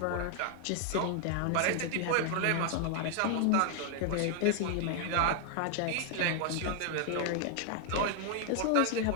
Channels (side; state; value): both; different; correlation 0.00